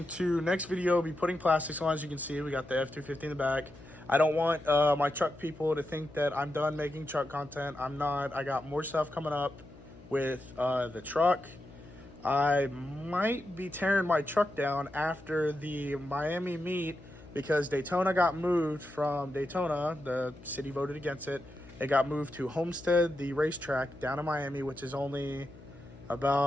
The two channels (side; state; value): left; noise; hum, 20 dB below the sound